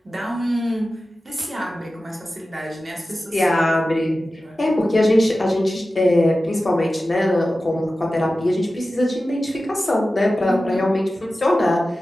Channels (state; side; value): normal; both; correlation 0.94